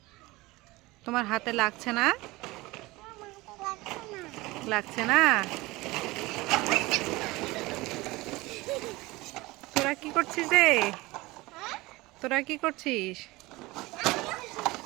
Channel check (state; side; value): quieter; left; 21.1 dB